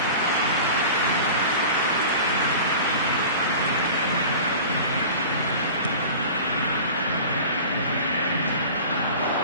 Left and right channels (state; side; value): inverted; both; correlation -0.38